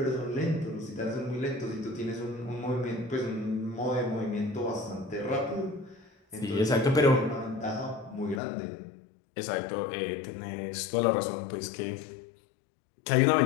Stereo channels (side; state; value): right; drops out; at 8.4 s